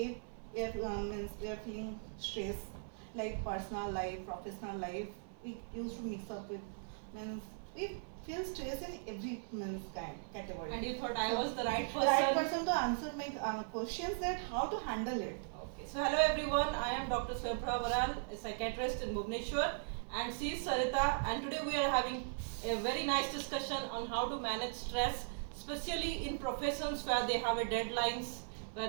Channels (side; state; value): left; silent; 52 dB below the other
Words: we are feeling stress, like personal life, professional life. We used to mix up with means we feel stress in every means kind category. And you thought I was the right person? Right person to answer my questions that how to handle it. Okay. So hello everyone. I am Dr Swayam Prava Baral, a psychiatrist in Bhubaneswar, and she is Sarita. And today we are having a very nice discussion on how to manage stress, especially in professions where they have a deadlines,